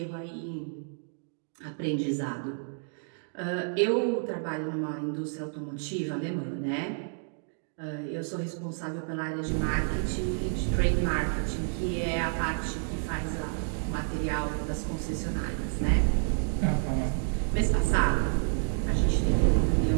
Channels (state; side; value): silent; left; digital silence